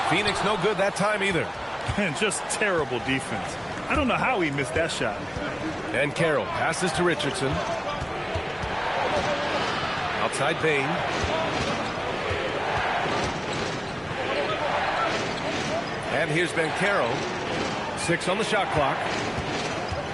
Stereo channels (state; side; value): identical; both; correlation 1.00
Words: Phoenix no good that time either. And just terrible defense. I don't know how he missed that shot. And Carroll passes to Richardson. Outside Bain. And here's Banchero. 6 on the shot clock.